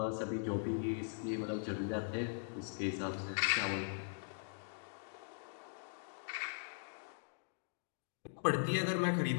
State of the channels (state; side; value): silent; right; digital silence